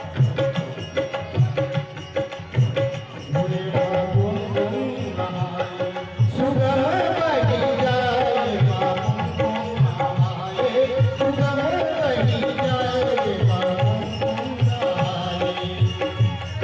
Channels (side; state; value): both; identical; correlation 1.00